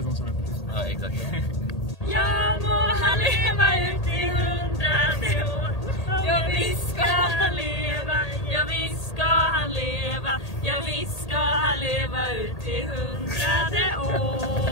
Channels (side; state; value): right; late; 1.8 ms